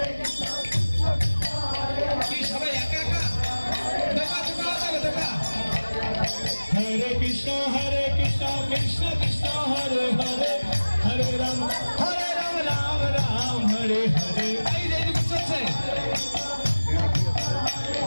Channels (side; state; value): both; inverted; correlation -1.00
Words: কি সবাই একা একা দেখা? হরে কৃষ্ণ কৃষ্ণ কৃষ্ণ হরে হরে, হরে রাম রাম রাম হরে হরে। এই যে এদিকে চলছে,